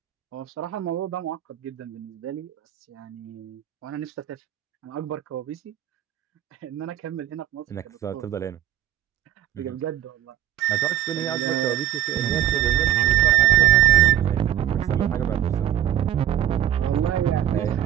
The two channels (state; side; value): quieter; left; 12.3 dB